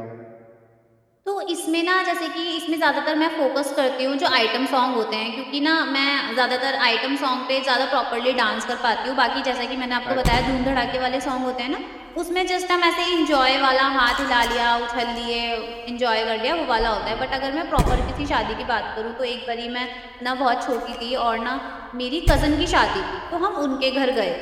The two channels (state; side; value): identical; both; correlation 1.00